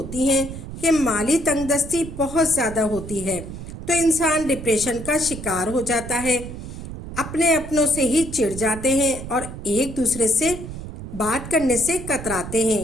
ہیں کہ مالی تنگ دستی بہت زیادہ ہوتی ہے، تو انسان ڈپریشن کا شکار ہو جاتا ہے، اپنے اپنوں سے ہی چڑ جاتے ہیں اور ایک دوسرے سے بات کرنے سے کتراتے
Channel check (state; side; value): noise; right; rumble, 10 dB below the sound